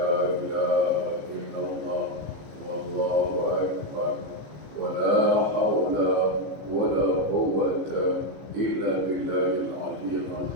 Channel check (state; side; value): late; left; 15 ms